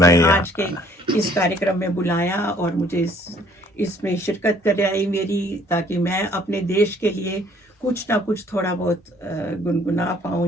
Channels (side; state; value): both; normal; correlation 0.59